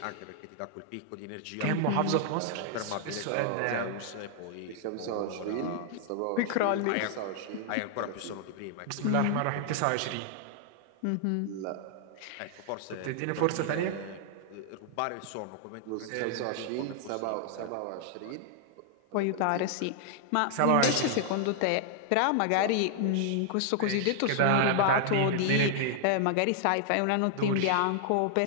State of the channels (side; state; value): both; different; correlation -0.01